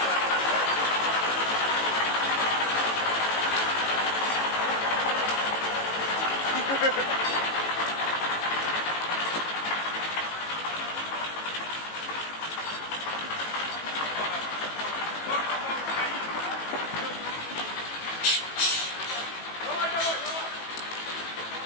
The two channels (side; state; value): right; late; 18 ms